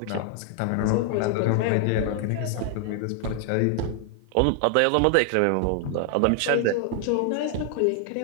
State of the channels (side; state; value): both; different; correlation 0.00